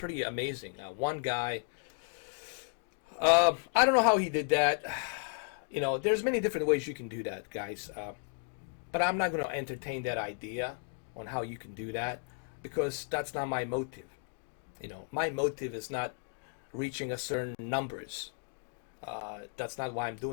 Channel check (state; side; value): silent; right; 55 dB below the other